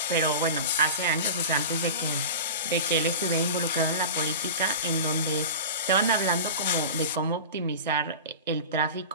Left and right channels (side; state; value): both; inverted; correlation -0.30